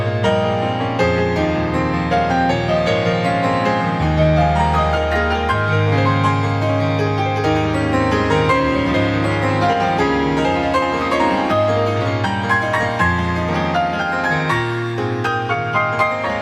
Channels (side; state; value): both; identical; correlation 1.00